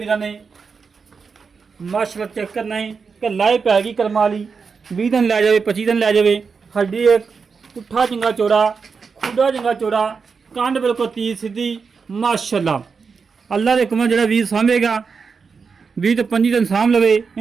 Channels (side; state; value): left; quieter; 5.4 dB